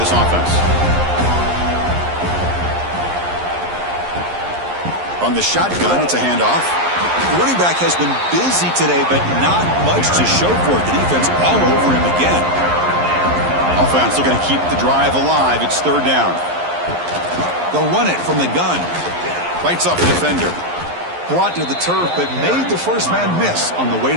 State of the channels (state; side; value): late; left; 11 ms